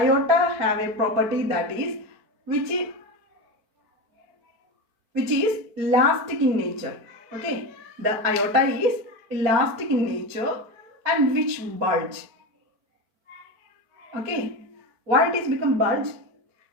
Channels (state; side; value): late; left; 4.5 ms